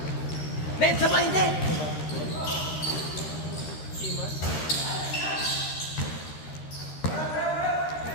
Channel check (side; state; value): right; late; 13 ms